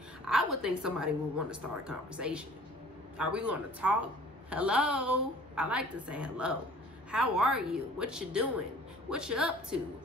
I would think somebody would want to start a conversation. Are we going to talk? Hello? I like to say hello. How are you? What you doing? What you up to?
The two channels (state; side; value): normal; both; correlation 0.49